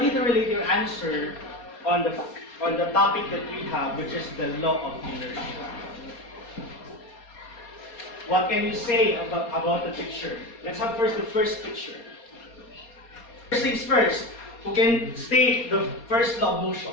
you to relate your answer on the topic that we have, which is the law of inertia. What can you say about the picture? Let's have first the first picture. First things first. Who can state the first law of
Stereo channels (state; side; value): late; right; 4.2 ms